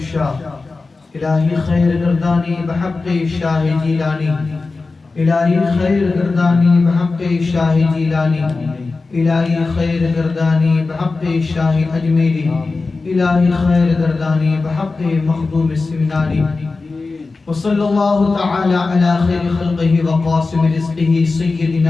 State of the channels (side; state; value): right; quieter; 3.8 dB